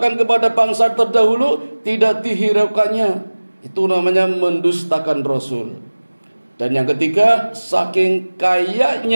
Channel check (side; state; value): both; inverted; correlation -1.00